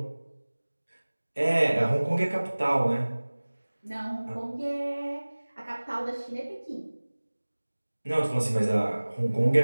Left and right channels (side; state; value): both; inverted; correlation -1.00